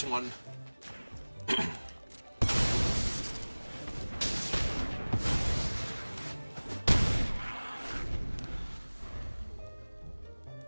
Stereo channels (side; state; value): both; inverted; correlation -1.00